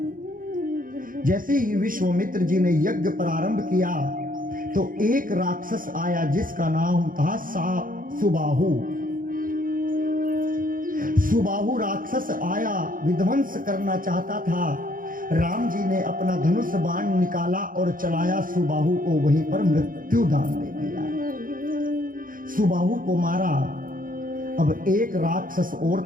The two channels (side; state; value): left; late; 0.40 ms